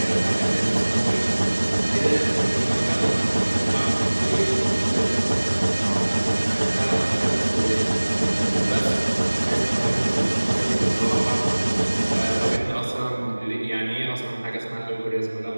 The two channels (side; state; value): both; inverted; correlation -1.00